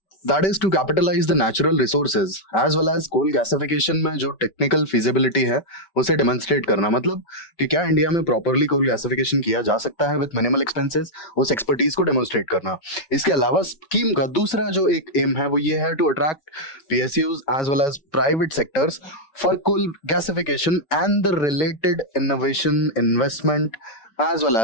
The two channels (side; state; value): right; late; 5.2 ms